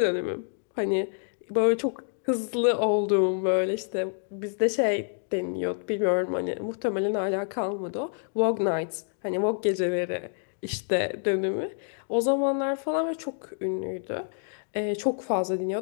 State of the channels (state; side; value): silent; right; 60 dB below the other